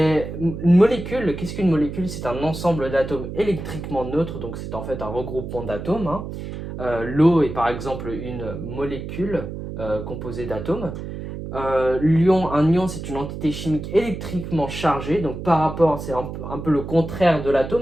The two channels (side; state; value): right; noise; hum, 8 dB below the sound